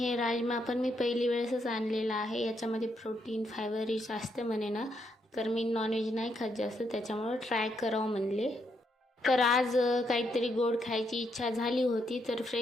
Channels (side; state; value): both; normal; correlation 0.77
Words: राजमा पण मी पहिली वेळेसच आणलेला आहे. याच्यामध्ये प्रोटीन, फायबर रिच असते म्हणे ना, तर मी नॉनव्हेज नाही खात जास्त, त्याच्यामुळे ट्राय करावं म्हणले. तर आज काहीतरी गोड खायची इच्छा झाली होती, तर